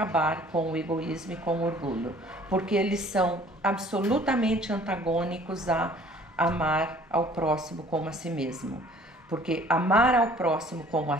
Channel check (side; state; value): both; normal; correlation 0.54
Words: com o egoísmo e com o orgulho, porque eles são absolutamente antagônicos a amar ao próximo como a si mesmo. Porque amar ao próximo como a